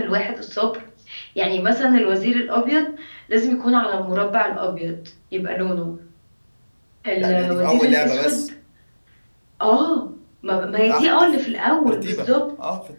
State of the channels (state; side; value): inverted; both; correlation -1.00